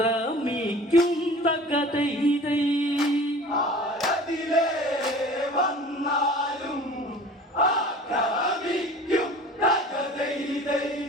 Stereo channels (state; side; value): normal; both; correlation 0.43